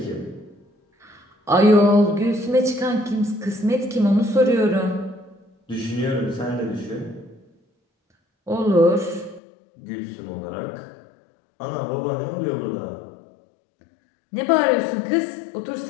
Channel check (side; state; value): right; drops out; at 9.4 s